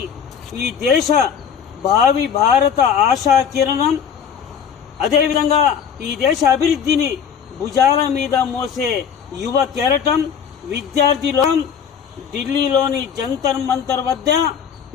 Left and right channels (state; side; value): quieter; right; 7.6 dB